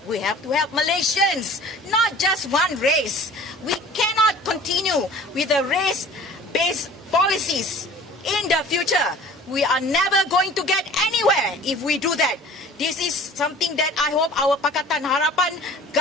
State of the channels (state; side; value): normal; both; correlation 0.46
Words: We have to help Malaysians, not just one race. We cannot continue with the race-based policies in the future. We are never going to get anywhere if we do that. This is something that I hope our Pakatan Harapan